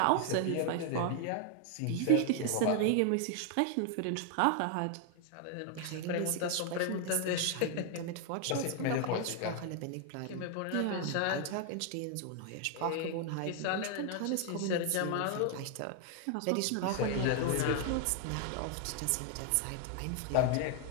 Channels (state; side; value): different; both; correlation 0.00